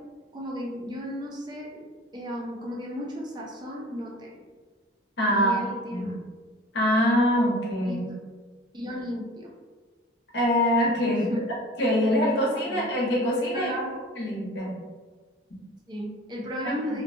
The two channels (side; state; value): both; normal; correlation 0.42